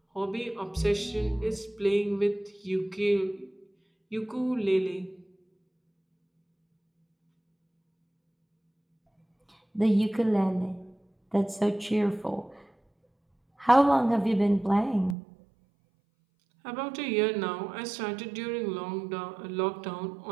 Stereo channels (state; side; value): drops out; left; at 15.2 s